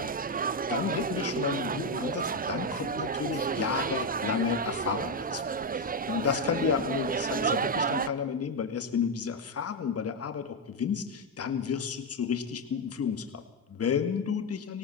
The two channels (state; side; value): normal; both; correlation 0.06